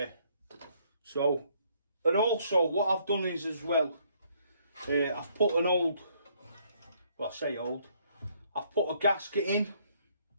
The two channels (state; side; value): inverted; both; correlation -0.67